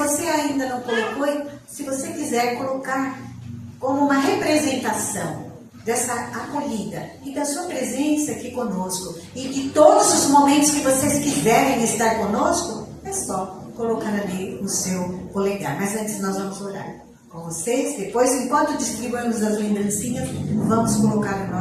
ainda não colocou, se você quiser colocar como uma representação dessa acolhida e da sua presença aqui conosco, e de todos os momentos que vocês quiserem estar conosco, é só colocar ali o seu polegar. Mas antes nós vamos orar com vocês. Depois, enquanto distribuímos as lembrancinhas, vamos colocar o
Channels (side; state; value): both; identical; correlation 1.00